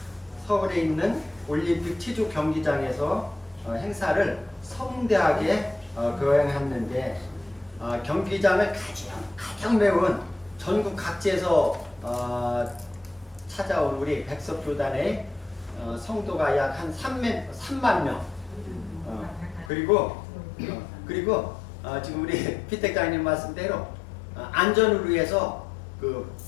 서울에 있는 올림픽 체조 경기장에서 행사를 성대하게 거행했는데, 경기장을 가장 메운 전국 각지에서 찾아온 우리 백석교단의 성도가 약 한 3만 명. 그리고 지금 우리 피택장님 말씀대로 안전을 위해서 그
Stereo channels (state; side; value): drops out; right; at 19.7 s